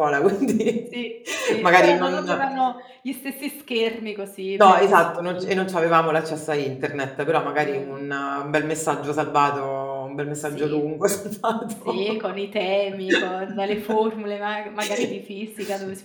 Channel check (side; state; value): both; identical; correlation 1.00